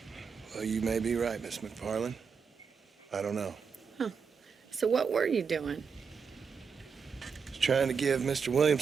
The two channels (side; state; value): left; quieter; 6.0 dB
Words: Well, you may be right, Miss McFarland. I don't know. So what were you doing? Was trying to give Mr.